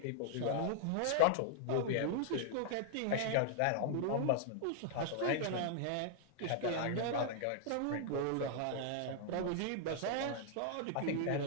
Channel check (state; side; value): different; both; correlation -0.01